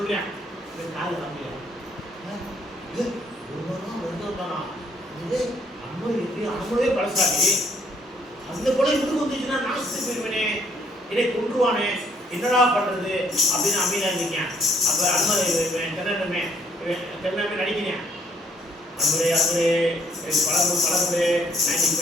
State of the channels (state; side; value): normal; both; correlation 0.66